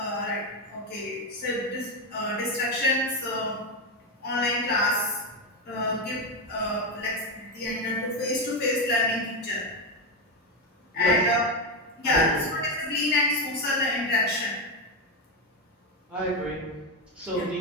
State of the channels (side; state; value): both; normal; correlation 0.10